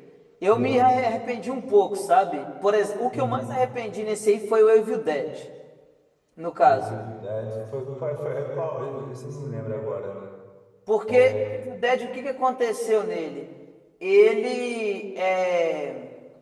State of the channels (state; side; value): identical; both; correlation 1.00